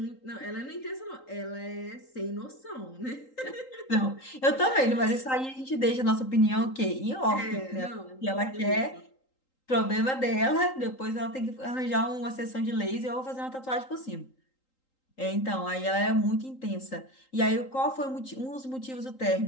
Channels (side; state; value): right; late; 3.8 ms